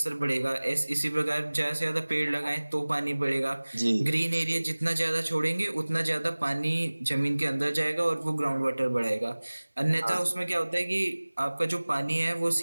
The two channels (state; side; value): inverted; both; correlation -1.00